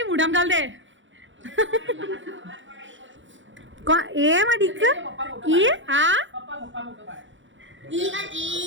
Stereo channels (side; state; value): left; late; 0.55 ms